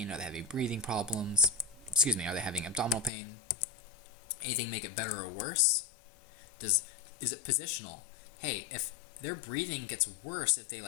Are they having breathing problems? Are they having abdominal pain? Anything make it better or worse? Is it positional? Hey, if their breathing gets worse if they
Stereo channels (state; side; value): drops out; right; at 3.1 s